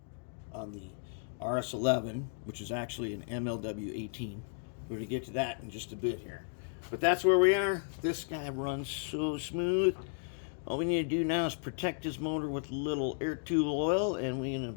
RS11, which is actually an MLW18. We're going to get to that in just a bit here. But that's where we are. This guy runs so smooth. All we need to do now is protect his motor with a little air tube oil, and we're going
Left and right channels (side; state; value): right; silent; digital silence